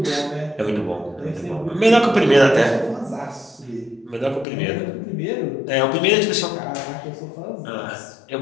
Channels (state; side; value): drops out; right; at 4.5 s